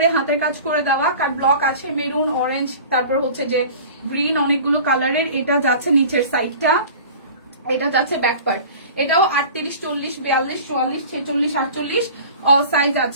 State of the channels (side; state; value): both; inverted; correlation -0.41